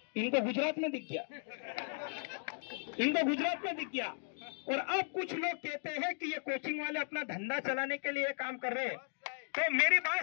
इनको गुजरात में दिख गया, इनको गुजरात में दिख गया। और अब कुछ लोग कहते हैं कि ये कोचिंग वाले अपना धंधा चलाने के लिए काम कर रहे हैं। तो मेरी बात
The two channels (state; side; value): silent; right; digital silence